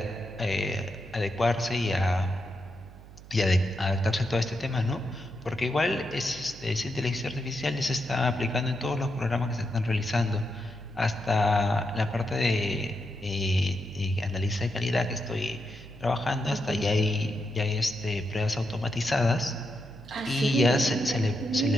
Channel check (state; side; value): noise; right; hum, 18 dB below the sound